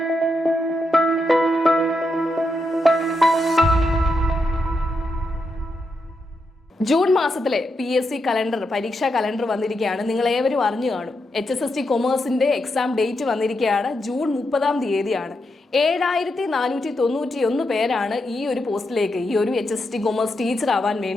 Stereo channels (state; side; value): normal; both; correlation 0.84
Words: ജൂൺ മാസത്തിലെ PSC കലണ്ടർ, പരീക്ഷാ കലണ്ടർ വന്നിരിക്കുകയാണ്. നിങ്ങൾ ഏവരും അറിഞ്ഞു കാണും. HSST കൊമേഴ്സിന്റെ എക്സാം ഡേറ്റ് വന്നിരിക്കുകയാണ്. ജൂൺ 30 7,491 പേരാണ് ഈ ഒരു പോസ്റ്റിലേക്ക്, ഈ ഒരു HSST കൊമേഴ്സ് ടീച്ചർ ആവാൻ